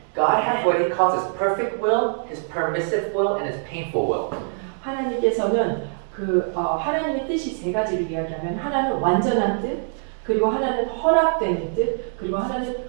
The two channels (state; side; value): silent; left; digital silence